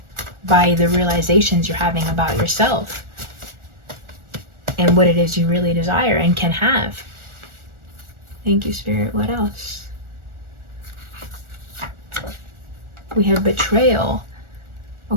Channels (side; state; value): left; late; 1.4 ms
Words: by the realizations you're having about yourself and what it is you really desire and can have. Thank you, Spirit. What else? We have betrayal.